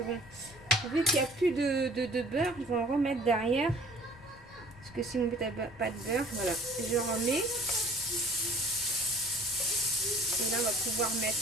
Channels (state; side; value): noise; left; rumble, 22 dB below the sound